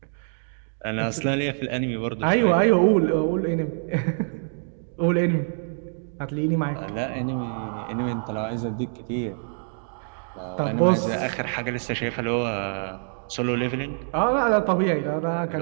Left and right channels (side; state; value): left; silent; digital silence